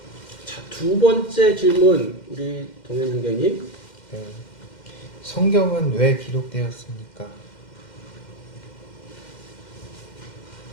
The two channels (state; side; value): late; right; 2.1 ms